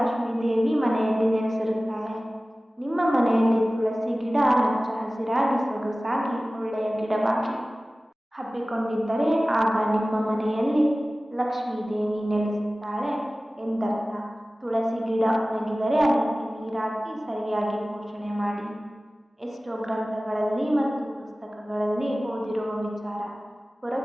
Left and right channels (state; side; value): normal; both; correlation 0.97